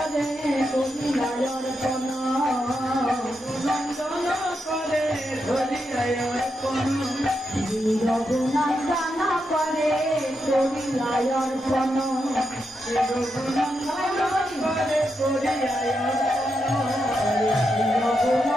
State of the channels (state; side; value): normal; both; correlation 0.84